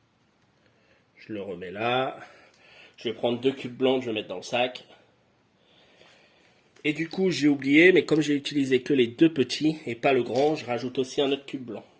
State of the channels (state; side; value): identical; both; correlation 1.00